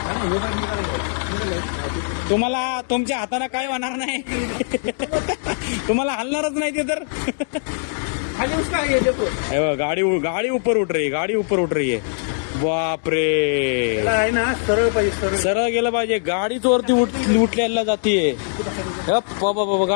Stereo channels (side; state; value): right; silent; digital silence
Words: तुम्हाला तुमच्या हाताने काय होणार नाही. तुम्हाला हलणारच नाही ते तर. हे बघा, गाडी ऊपर उठ रही है, गाडी ऊपर उठ रही है. बाप रे, आहे ना सरळ पाहिजे सरळ. सरळ गेलं पाहिजे. गाडीच वरती उठल्याला जातीये. बाबा